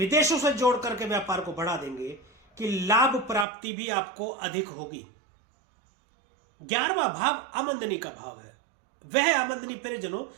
से जोड़ करके व्यापार को बढ़ा देंगे कि लाभ प्राप्ति भी आपको अधिक होगी। 11वां भाव आमदनी का भाव है। वह आमदनी प्रियजनों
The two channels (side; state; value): left; drops out; at 3.5 s